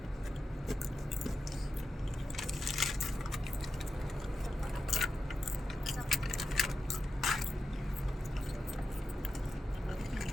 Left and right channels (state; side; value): normal; both; correlation 0.89